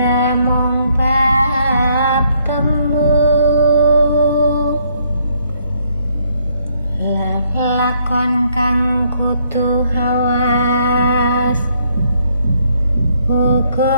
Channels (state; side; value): inverted; both; correlation -0.70